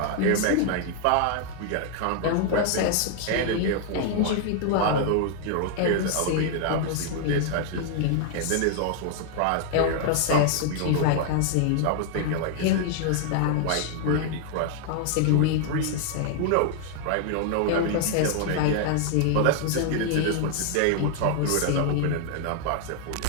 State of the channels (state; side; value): different; both; correlation 0.00